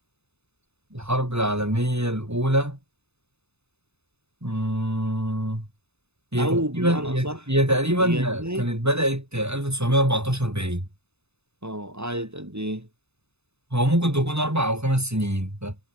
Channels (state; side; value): late; left; 0.80 ms